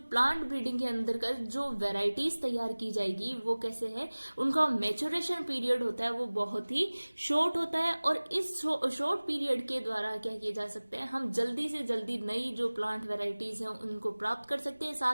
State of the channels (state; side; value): inverted; both; correlation -1.00